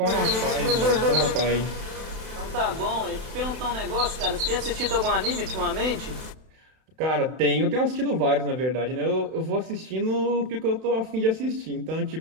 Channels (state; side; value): late; left; 32 ms